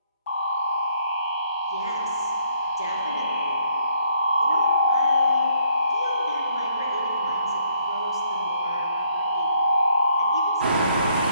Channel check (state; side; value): inverted; both; correlation -0.67